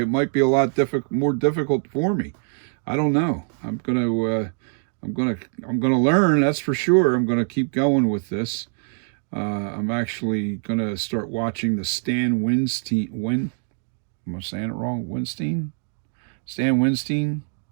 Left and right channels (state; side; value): silent; left; 58 dB below the other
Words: might be a lot more difficult for me. I don't know. I'm gonna learn. That's for sure. I'm gonna keep going with this. I'm actually gonna start watching the Stan Winstein. Am I saying it wrong? Stan Winstein.